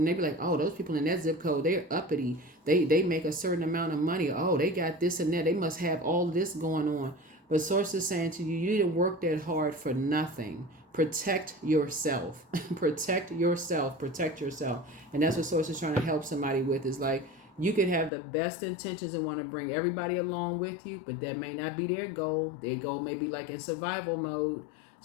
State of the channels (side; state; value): right; drops out; at 18.1 s